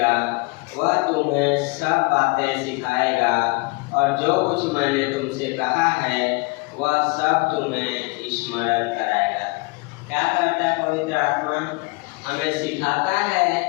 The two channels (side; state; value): right; quieter; 27.2 dB